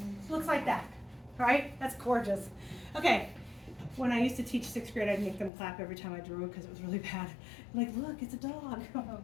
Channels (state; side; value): drops out; right; at 5.5 s